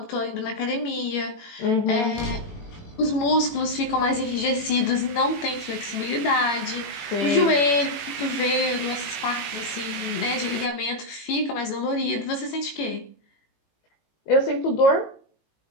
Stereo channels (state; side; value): late; right; 18 ms